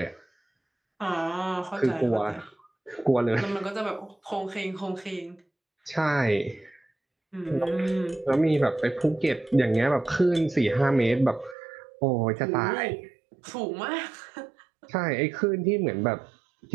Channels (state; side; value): drops out; left; at 11.6 s